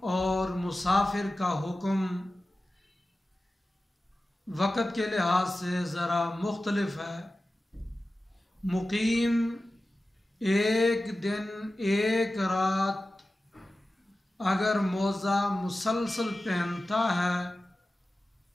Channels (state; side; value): normal; both; correlation 0.95